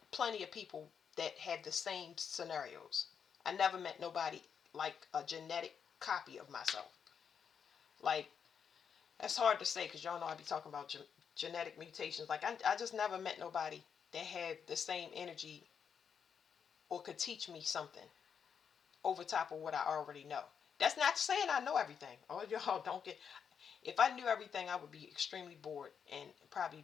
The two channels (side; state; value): right; quieter; 7.1 dB